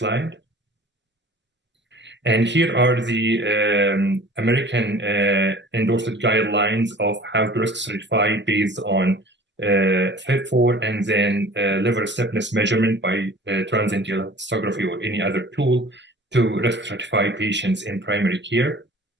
And here are the American endorsed guidelines of how to risk stratify based on FIB4 and then liver stiffness measurement by transient elastography or any other tool to risk stratify patients in primary care.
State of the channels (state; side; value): normal; both; correlation 0.46